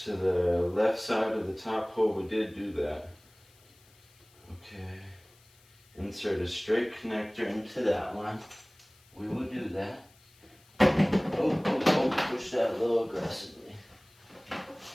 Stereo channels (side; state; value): left; noise; hiss, 29 dB below the sound